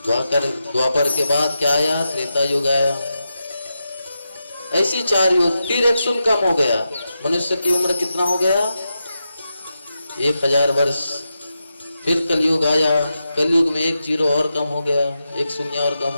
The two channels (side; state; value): both; inverted; correlation -0.88